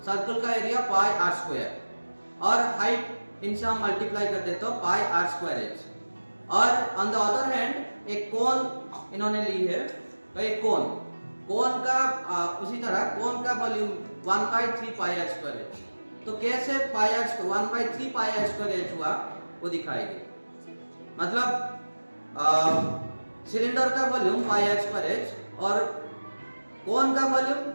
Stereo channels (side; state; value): both; inverted; correlation -1.00